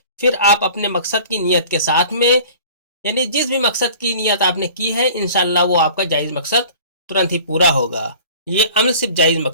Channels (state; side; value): inverted; both; correlation -0.45